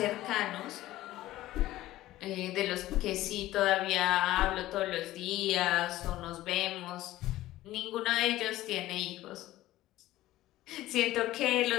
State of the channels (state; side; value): quieter; right; 15.7 dB